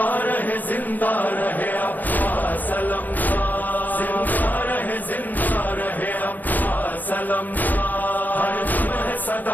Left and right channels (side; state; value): right; late; 0.084 ms